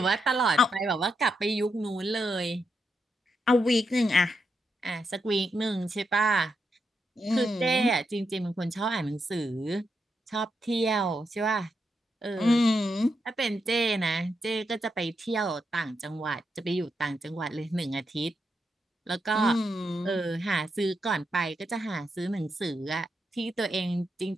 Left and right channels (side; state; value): both; normal; correlation 0.83